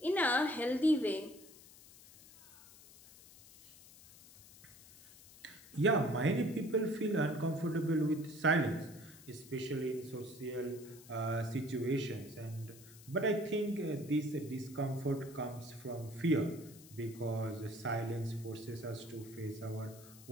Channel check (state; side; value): noise; left; hiss, 20 dB below the sound